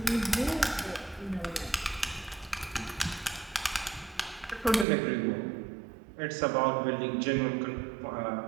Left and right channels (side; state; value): left; drops out; at 4.9 s